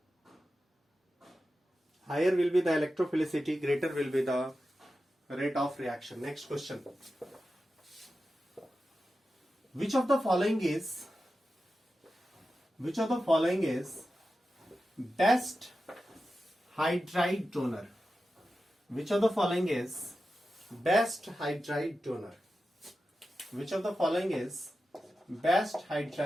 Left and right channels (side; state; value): both; normal; correlation 0.92